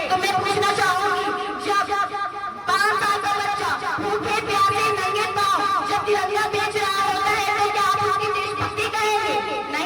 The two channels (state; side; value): identical; both; correlation 1.00